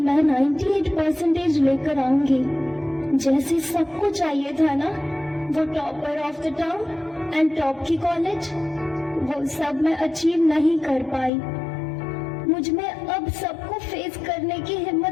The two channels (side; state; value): right; drops out; at 11.3 s